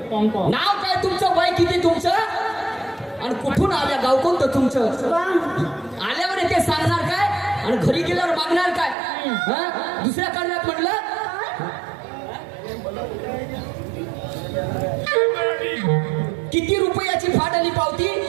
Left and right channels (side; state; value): left; drops out; at 9.0 s